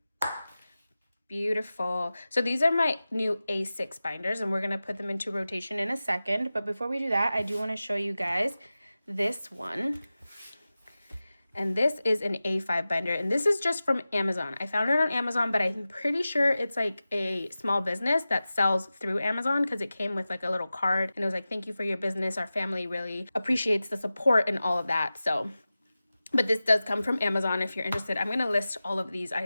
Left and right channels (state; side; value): inverted; both; correlation -0.96